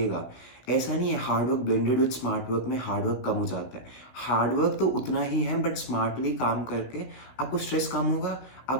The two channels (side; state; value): right; late; 16 ms